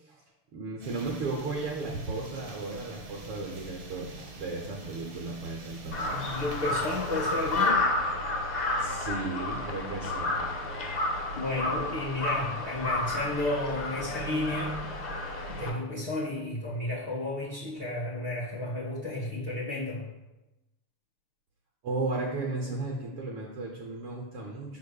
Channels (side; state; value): left; late; 6.8 ms